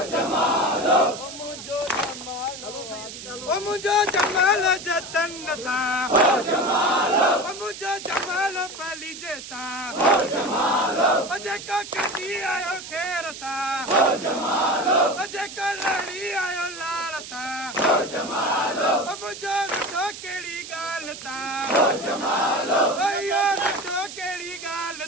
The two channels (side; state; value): right; noise; hiss, 12 dB below the sound